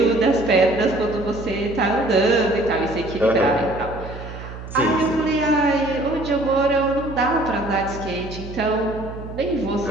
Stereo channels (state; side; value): noise; right; hum, 12 dB below the sound